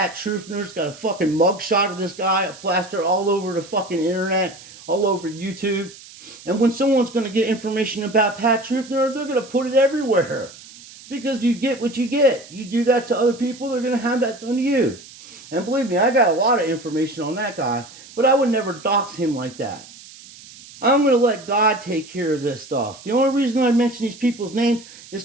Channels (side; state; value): right; noise; hiss, 19 dB below the sound